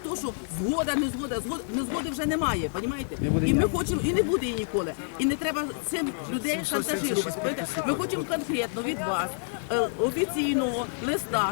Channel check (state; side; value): silent; right; digital silence